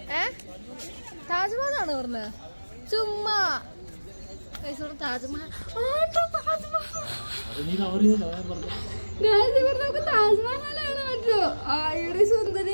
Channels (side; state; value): both; inverted; correlation -1.00